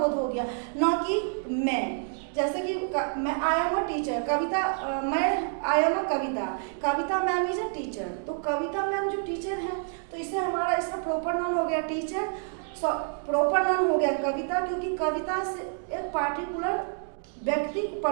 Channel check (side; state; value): left; silent; 57 dB below the other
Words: हो गया, न कि मैं। जैसे कि मैं आई एम अ टीचर, मैं I am a Kavita ma'am is a teacher. तो कविता मैम जो टीचर है, तो इससे हमारा इसका प्रॉपर नाउन हो गया टीचर, प्रॉपर नाउन हो गया कविता, क्योंकि कविता से एक पार्टिकुलर व्यक्ति